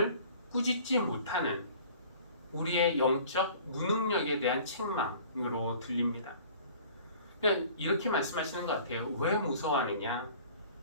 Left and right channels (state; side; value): inverted; both; correlation -0.48